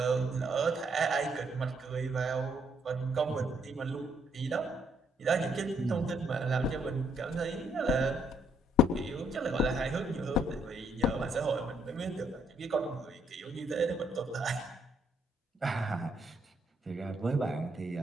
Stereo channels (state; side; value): normal; both; correlation 0.71